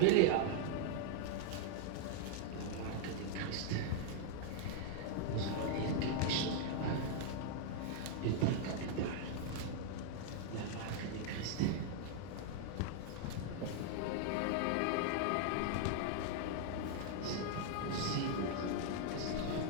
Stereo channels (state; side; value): different; both; correlation 0.00